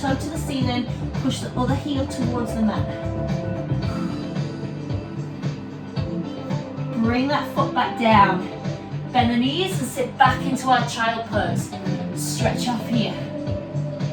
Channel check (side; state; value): both; identical; correlation 1.00